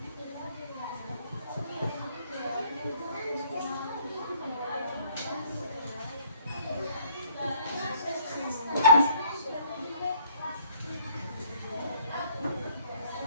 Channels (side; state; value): both; inverted; correlation -0.59